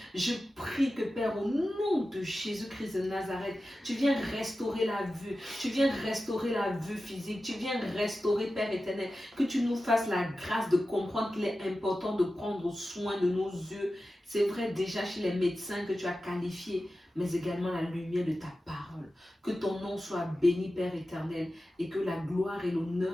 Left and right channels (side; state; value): both; normal; correlation 0.93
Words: que, Père, au nom de Jésus-Christ de Nazareth, tu viens restaurer la vue, tu viens restaurer la vue physique, tu viens restaurer, Père éternel, que tu nous fasses la grâce de comprendre qu'il est important de prendre soin de nos yeux. C'est vrai déjà chez les médecins que tu as qualifiés, mais également la lumière de ta parole. Que ton nom soit béni, Père éternel, et que la gloire et